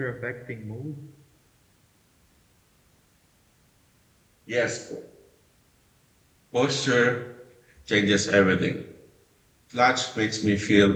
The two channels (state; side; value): identical; both; correlation 1.00